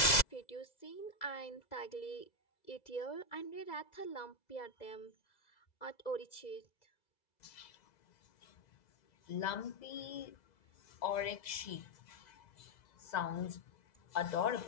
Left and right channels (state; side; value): late; right; 2.0 ms